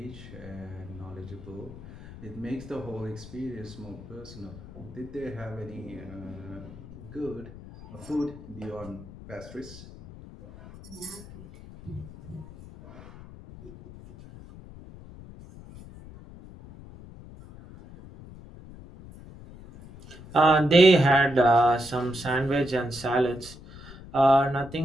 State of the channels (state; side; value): noise; left; rumble, 16 dB below the sound